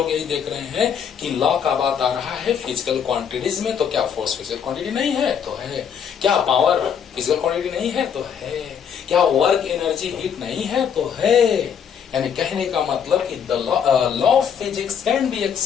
यही देख रहे हैं कि लॉ का बात आ रहा है फिजिकल क्वांटिटीज में। तो क्या फोर्स फिजिकल क्वांटिटी नहीं है? तो है। क्या पावर फिजिकल क्वांटिटी नहीं है? तो है। क्या वर्क, एनर्जी, हीट नहीं है? तो है। यानी कहने का मतलब कि the law of physics can be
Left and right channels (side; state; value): right; quieter; 7.8 dB